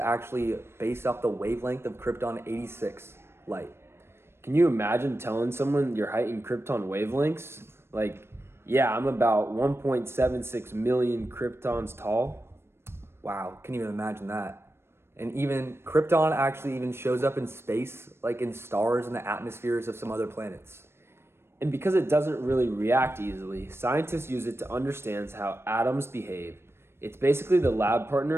based off the wavelength of krypton 86 light. Can you imagine telling someone your height in krypton wavelengths? Like, yeah, I'm about 1.76 million kryptons tall. Wow, can't even imagine that. And even krypton actually even shows up in space, like in stars and the atmospheres of some other planets. And because it doesn't really react easily, scientists use it to understand how atoms behave. It's basically the lab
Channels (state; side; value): late; left; 0.12 ms